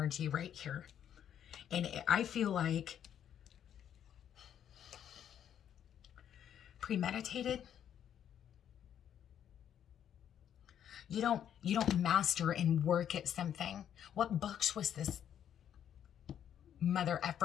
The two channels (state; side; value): quieter; right; 9.6 dB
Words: right here. And I feel like premeditated. You don't master and work at something. What books was this mother